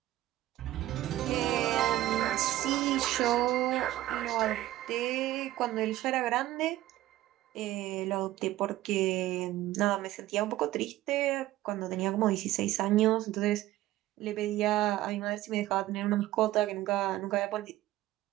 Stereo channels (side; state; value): left; quieter; 15.3 dB